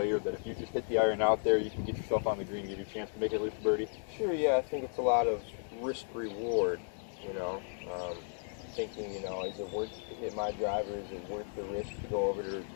that if you just hit the iron out there, you can get yourself on the green, give you a chance to make it loose birdie? Sure, yeah. I think it's a lot of risk reward. Thinking, is it worth to hit my driver? Is it worth the risk to go over to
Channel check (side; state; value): right; silent; 55 dB below the other